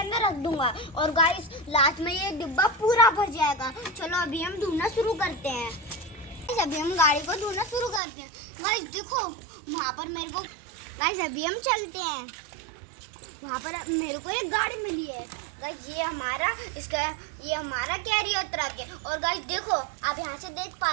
रख दूंगा और गाइस लास्ट में ये डिब्बा पूरा भर जाएगा। चलो अभी हम ढूंढना शुरू करते हैं। अभी हम गाड़ी को ढूंढना शुरू करते हैं। गाइस देखो वहाँ पर मेरे को, गाइस अभी हम चलते हैं। वहाँ पर मेरे को एक गाड़ी मिली है। गाइस ये हमारा कैरियर ट्रक है। और गाइस देखो आप यहाँ से देख पा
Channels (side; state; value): left; drops out; at 8.0 s